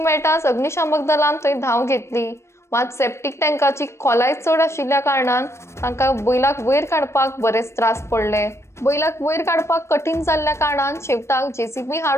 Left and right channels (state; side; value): late; right; 0.13 ms